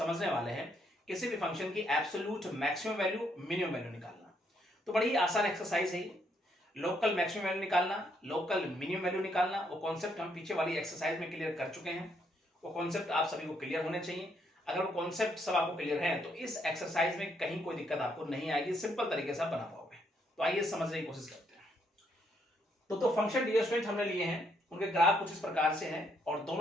वाले हैं किसी भी फंक्शन की absolute maximum value minimum value निकालना। तो बड़ी आसान एक्सरसाइज है। लोकल मैक्सिमम वैल्यू निकालना, लोकल मिनिमम वैल्यू निकालना, वो कॉन्सेप्ट हम पीछे वाली एक्सरसाइज में क्लियर कर चुके हैं। वो कॉन्सेप्ट आप सभी को क्लियर होने चाहिए। अगर वो कॉन्सेप्ट सब आपको क्लियर है तो इस एक्सरसाइज में कहीं कोई दिक्कत आपको नहीं आएगी, सिंपल तरीके से आप बना पाओगे। तो आइए समझने की कोशिश करते हैं। तो फंक्शन डियर स्टूडेंट हमने लिए हैं, उनके ग्राफ कुछ इस प्रकार से हैं और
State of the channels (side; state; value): both; normal; correlation 0.73